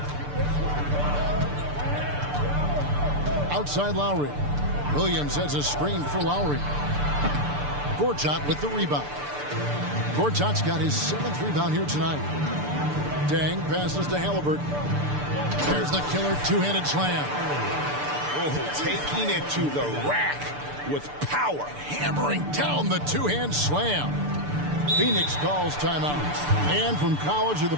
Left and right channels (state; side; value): late; left; 6.8 ms